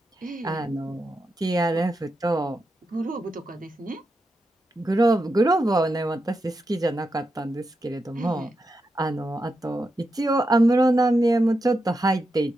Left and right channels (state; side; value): normal; both; correlation 0.87